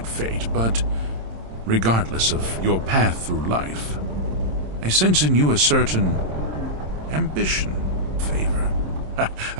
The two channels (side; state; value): left; late; 27 ms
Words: fate, but regardless of your path through life, I sense in you a certain ambition, favor.